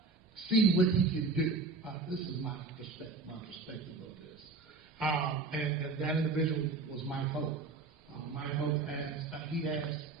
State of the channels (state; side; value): quieter; left; 3.9 dB